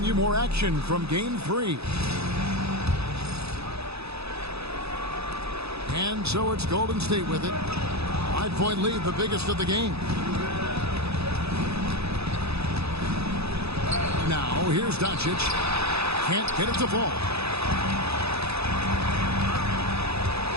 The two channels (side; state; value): left; late; 0.79 ms